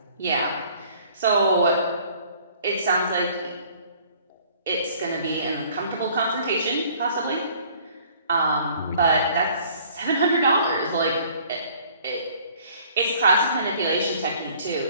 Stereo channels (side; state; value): both; inverted; correlation -0.55